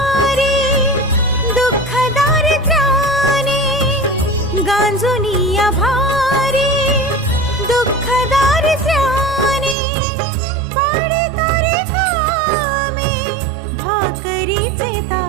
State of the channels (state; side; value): drops out; left; at 9.8 s